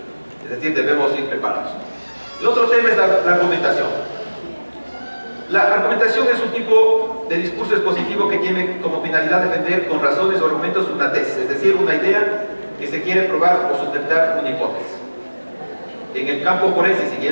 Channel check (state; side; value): inverted; both; correlation -1.00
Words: es decir, debemos ir preparados. El otro tema es la argumentación. La argumentación es un tipo de discurso expositivo que tiene como finalidad defender con razones o argumentos una tesis, es decir, una idea que se quiere probar o sustentar una hipótesis. En el campo forense,